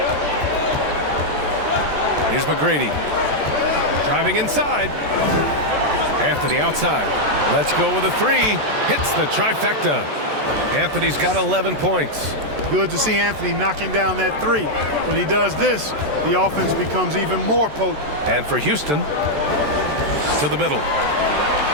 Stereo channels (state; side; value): late; left; 14 ms